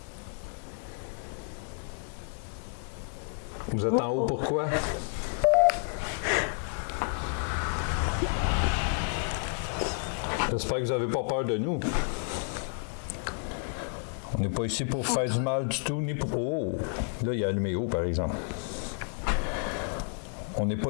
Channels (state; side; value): silent; right; 57 dB below the other